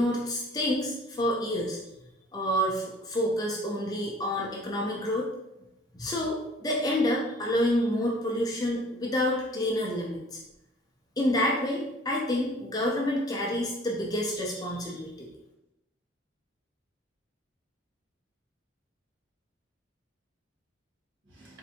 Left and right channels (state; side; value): normal; both; correlation 0.50